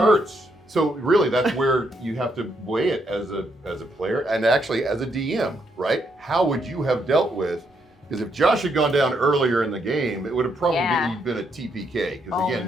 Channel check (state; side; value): normal; both; correlation 0.76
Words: hurts. So really, that's where you have to weigh it as a player and actually as a DM, right? How would you have dealt with? Because if Josh had gone down earlier in the game, it would have probably Yeah. been a TPK. Because Oh,